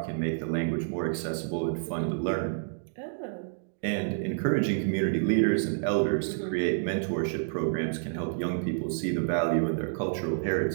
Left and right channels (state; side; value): silent; left; digital silence